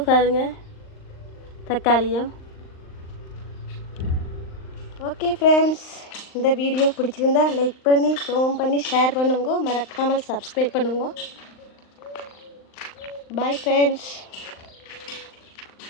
பாருங்க. தக்காளியும். ஓகே ஃப்ரெண்ட்ஸ், இந்த வீடியோ பிடிச்சிருந்தா லைக் பண்ணி கமெண்ட் பண்ணி ஷேர் பண்ணுங்க. மறக்காமல் சப்ஸ்கிரைப் பண்ணுங்க. Bye friends.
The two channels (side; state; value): right; late; 39 ms